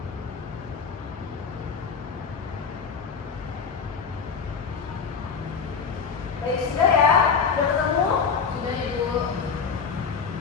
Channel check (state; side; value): quieter; right; 5.9 dB